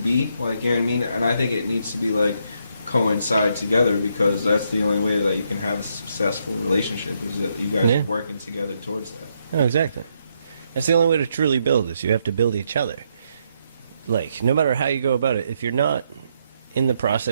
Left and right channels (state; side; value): inverted; both; correlation -0.76